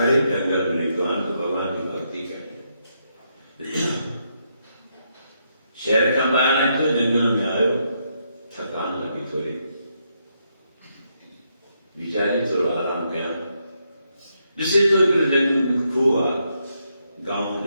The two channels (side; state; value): both; inverted; correlation -0.79